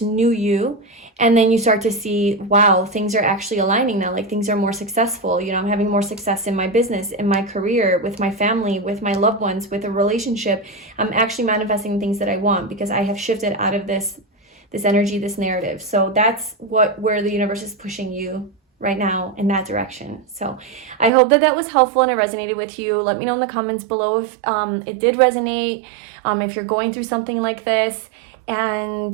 new you. And then you start to see, wow, things are actually aligning now. Like, things are more successful. I'm having more success in my business, in my career, with my family, with my loved ones, with a relationship. I'm actually manifesting things that I want because I have shifted out of this energy, this narrative. So that's where the universe is pushing you right now, in that direction. So I hope that was helpful and it resonated with you. Let me know in the comments below if it did resonate, if you're going through something like this.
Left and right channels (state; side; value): drops out; left; at 21.1 s